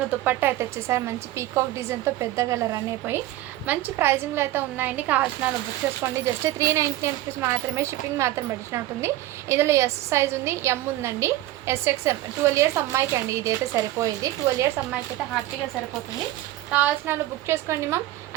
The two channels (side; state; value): left; quieter; 15.7 dB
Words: దుపట్టా అయితే వచ్చేసారు. మంచి పీకాక్ డిజైన్తో పెద్దగా రన్ అయిపోయి మంచి ప్రైజింగ్లో అయితే ఉన్నాయండి, కావాల్సిన బుక్ చేసుకోండి. జస్ట్ 399 రూపీస్ మాత్రమే, షిప్పింగ్ మాత్రం పడిచినట్టుంది. ఇందులో ఎస్ సైజ్ ఉంది, ఎం ఉందండి, SXM 12 years అమ్మాయికి అండి, ఇది అయితే సరిపోయేది. 12 years అమ్మాయికి అయితే హ్యాపీగా సరిపోతుంది, కావాల్సిన బుక్ చేసుకోండి మ్యామ్.